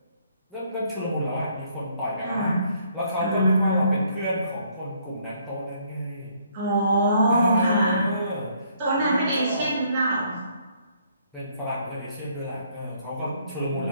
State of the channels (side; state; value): both; inverted; correlation -0.66